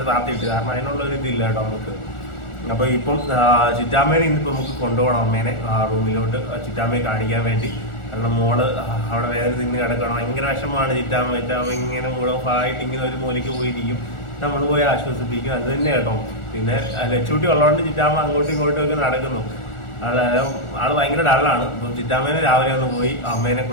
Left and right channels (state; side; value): late; right; 1.4 ms